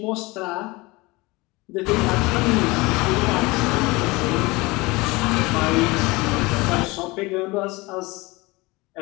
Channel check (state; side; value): quieter; right; 23.3 dB